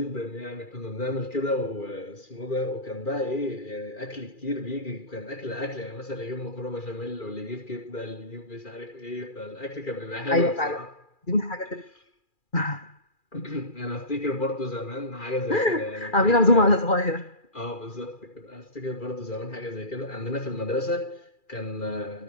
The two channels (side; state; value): right; late; 2.4 ms